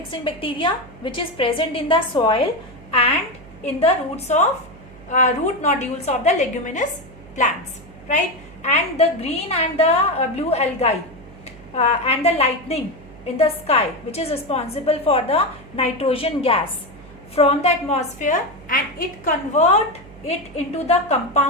bacteria? Which is present in the soil and in the roots of root nodules of the leguminous plants, right? And the green and the blue algae and the lightning in the sky, which is responsible for the nitrogen gas from the atmosphere, and it convert it into the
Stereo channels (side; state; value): right; noise; hum, 20 dB below the sound